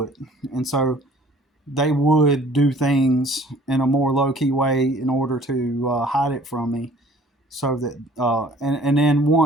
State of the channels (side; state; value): both; normal; correlation 0.53